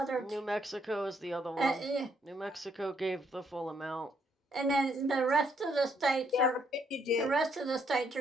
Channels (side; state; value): both; normal; correlation 0.71